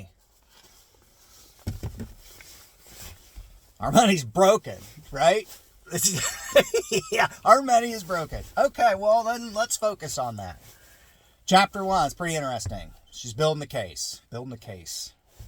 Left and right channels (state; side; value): identical; both; correlation 1.00